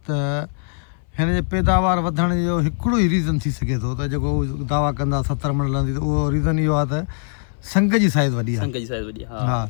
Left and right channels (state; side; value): silent; right; 62 dB below the other